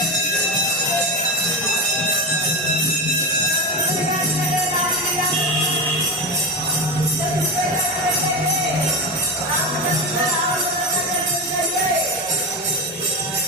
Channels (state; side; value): normal; both; correlation 0.18